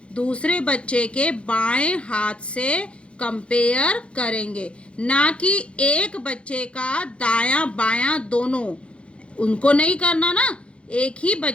दूसरे बच्चे के बाएं हाथ से कंपेयर करेंगे, ना कि एक बच्चे का दायां बायां दोनों, उनको नहीं करना ना, एक ही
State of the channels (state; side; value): late; right; 0.059 ms